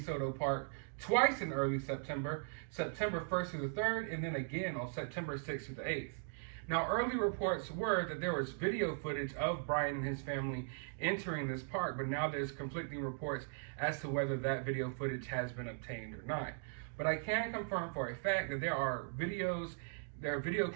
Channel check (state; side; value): silent; left; digital silence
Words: Park twice in early September, September 1st through the 3rd, and then again on September 6th through the 8th. Now, early reports were that there was video footage of Brian and his family entering this park, but now there's conflicting reports as to whether that video footage has been obtained or not. But I can confirm for a fact that there are video